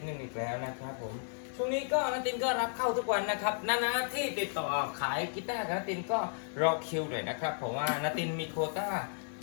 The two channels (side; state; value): right; silent; digital silence